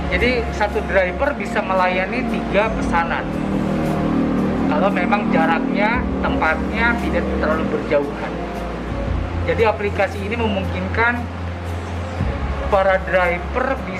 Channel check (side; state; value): both; identical; correlation 1.00